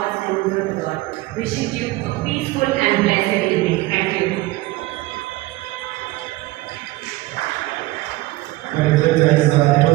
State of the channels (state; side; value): quieter; left; 19.4 dB